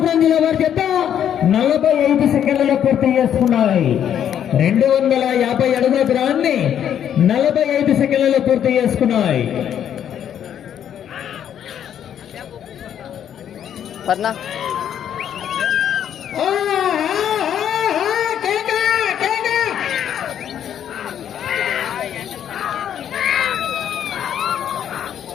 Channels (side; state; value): right; quieter; 9.6 dB